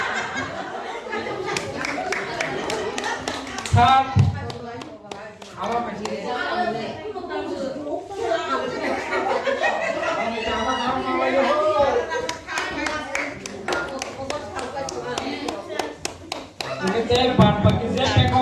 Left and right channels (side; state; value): both; identical; correlation 1.00